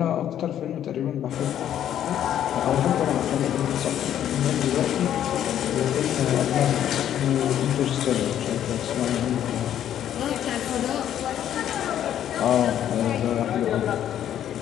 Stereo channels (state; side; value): quieter; right; 10.6 dB